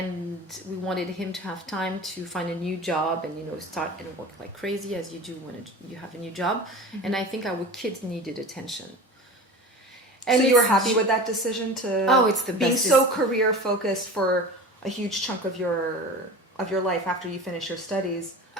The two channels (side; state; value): both; normal; correlation 0.35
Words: we wanted him to have time to find a new job and, start and work like crazy as you do when you have a new job. Mm-hmm. And I think our kids needed attention. And so you were happy with that decision it's the best. Being so career focused for a huge chunk of your life after you finish your studies.